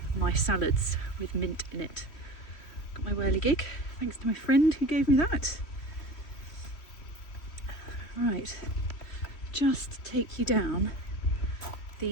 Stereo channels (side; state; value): right; late; 3.0 ms